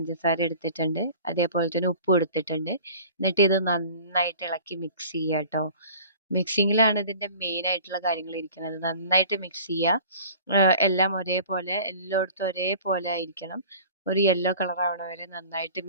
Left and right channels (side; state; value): both; inverted; correlation -0.44